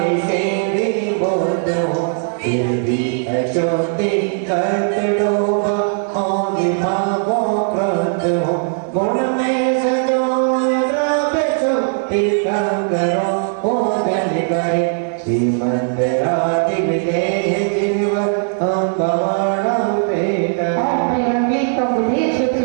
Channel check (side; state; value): left; silent; 56 dB below the other